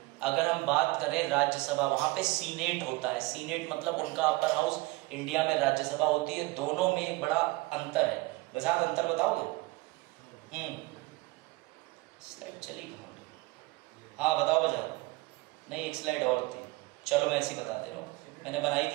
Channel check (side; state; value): left; quieter; 22.3 dB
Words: अगर हम बात करें राज्यसभा, वहां पे सीनेट होता है। सीनेट मतलब उनका अपर हाउस, इंडिया में राज्यसभा होती है। दोनों में एक बड़ा अंतर है। बजाज, अंतर बताओगे? स्लाइड चली कहाँ? हाँ बताओ बजाज। नहीं, एक स्लाइड और थी, चलो मैं ऐसी बता दे रहा हूँ, मैंने बनाई